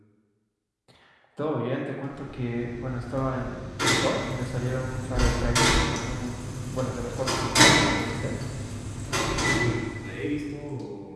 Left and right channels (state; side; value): identical; both; correlation 1.00